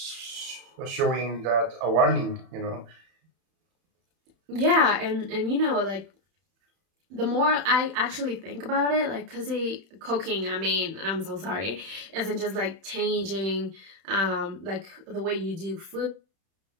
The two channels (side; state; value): left; late; 31 ms